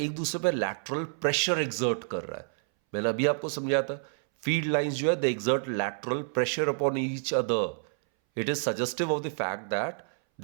एक दूसरे पर लैटरल प्रेशर एग्जर्ट कर रहा है। मैंने अभी आपको समझाया था फील्ड लाइंस जो है they exert lateral pressure upon each other. It is suggestive of the fact that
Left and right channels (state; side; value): silent; left; 59 dB below the other